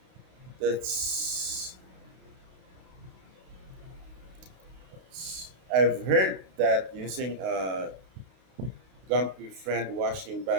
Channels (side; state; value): left; late; 32 ms